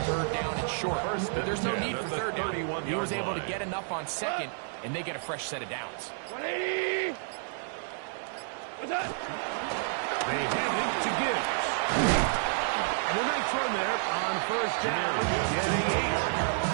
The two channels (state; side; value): silent; left; digital silence